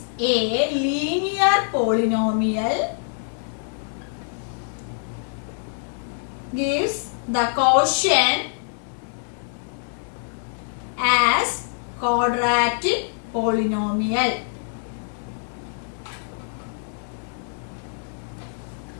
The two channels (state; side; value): silent; right; digital silence